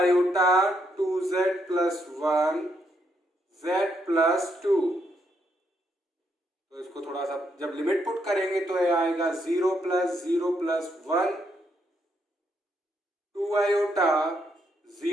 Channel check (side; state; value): both; normal; correlation 0.76